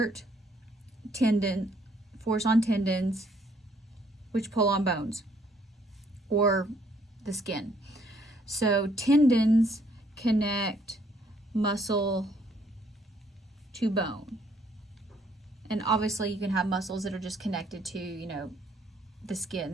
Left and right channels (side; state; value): both; normal; correlation 0.66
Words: force on tendons, which pull on bones or the skin. So tendons connect muscle to bone. And obviously you can have muscles that are just connected to, the